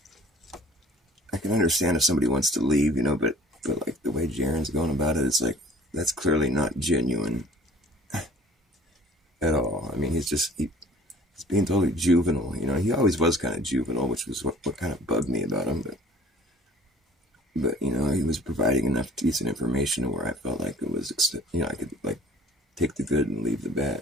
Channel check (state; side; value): normal; both; correlation 0.52